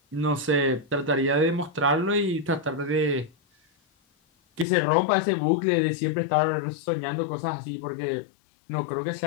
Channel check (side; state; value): right; drops out; at 4.7 s